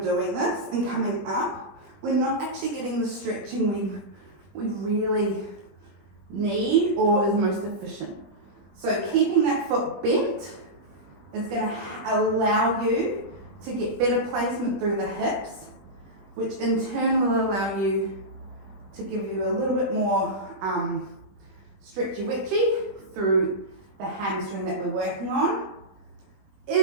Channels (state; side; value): late; left; 20 ms